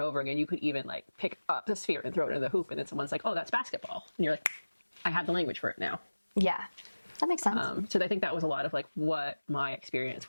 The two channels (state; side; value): inverted; both; correlation -1.00